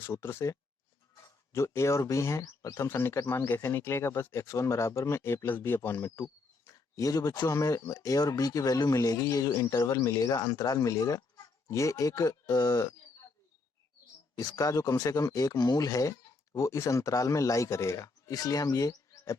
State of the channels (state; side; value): quieter; right; 3.8 dB